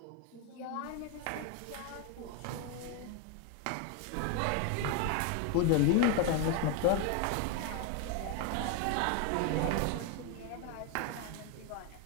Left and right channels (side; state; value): both; different; correlation 0.01